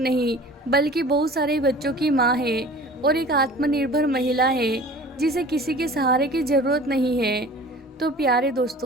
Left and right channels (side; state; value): both; normal; correlation 0.44